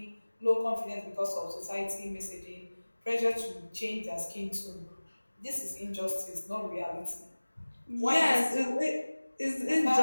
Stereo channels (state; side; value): inverted; both; correlation -1.00